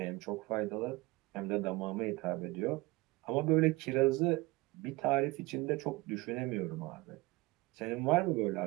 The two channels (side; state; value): left; quieter; 22.0 dB